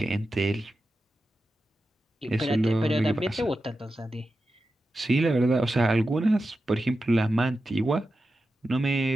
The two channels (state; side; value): normal; both; correlation 0.91